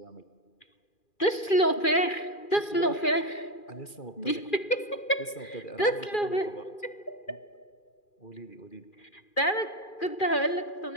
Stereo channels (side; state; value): right; late; 2.4 ms